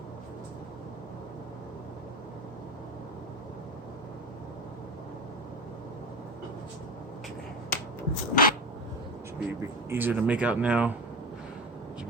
Should be a bit easier to make out now. As you can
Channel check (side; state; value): both; normal; correlation 0.24